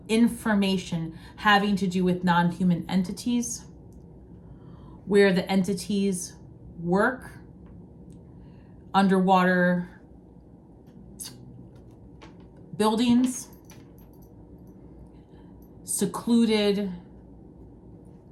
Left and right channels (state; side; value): identical; both; correlation 1.00